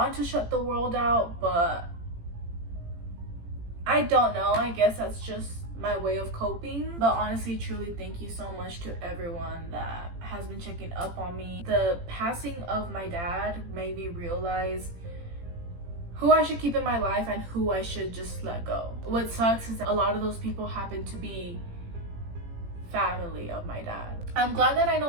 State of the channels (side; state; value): left; late; 18 ms